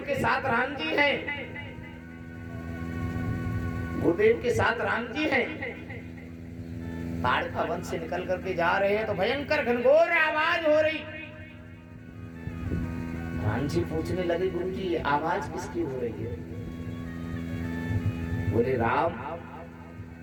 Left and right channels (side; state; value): both; identical; correlation 1.00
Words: के साथ राम जी हैं, गुरुदेव के साथ राम जी हैं। ताड़ का वन से निकल करके जा रहे हैं तो भयंकर घनघोर आवाज हो रही। राम जी पूछने लगे, गुरु जी आवाज किसकी हो रही है? बोले राम,